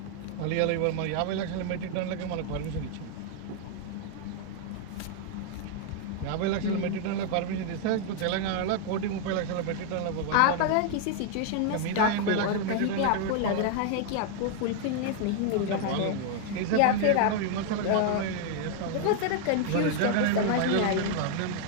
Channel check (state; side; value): different; both; correlation 0.00